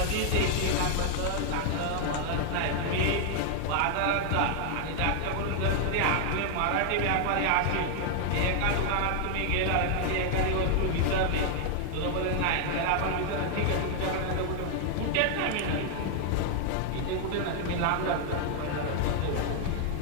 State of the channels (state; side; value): different; both; correlation 0.00